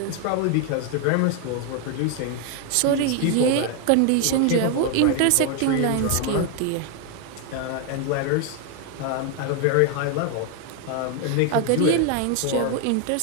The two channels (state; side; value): different; both; correlation 0.01